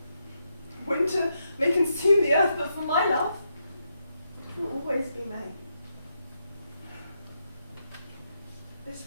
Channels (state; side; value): inverted; both; correlation -0.82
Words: Winter may consume the earth, but for my love, it will always be May. This